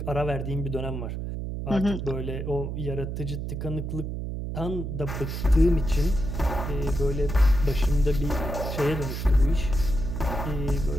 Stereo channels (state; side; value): noise; right; hum, 4 dB below the sound